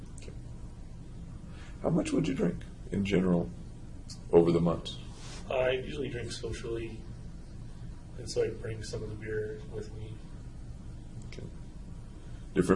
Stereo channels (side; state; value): both; identical; correlation 1.00